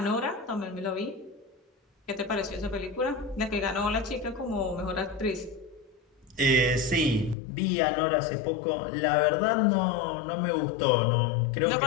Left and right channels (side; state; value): right; drops out; at 7.4 s